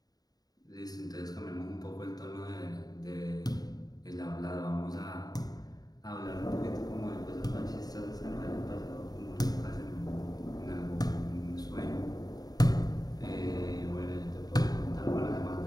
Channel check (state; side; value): late; right; 0.18 ms